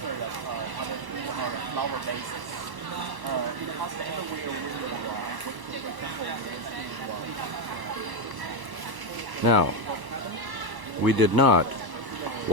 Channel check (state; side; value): late; left; 1.1 ms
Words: Now, we did not